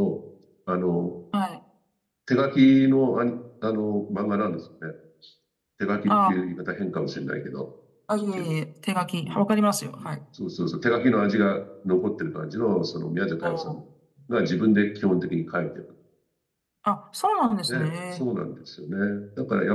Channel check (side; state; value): both; identical; correlation 1.00